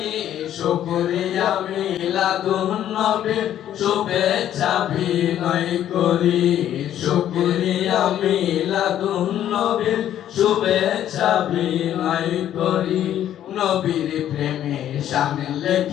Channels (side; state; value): right; quieter; 11.2 dB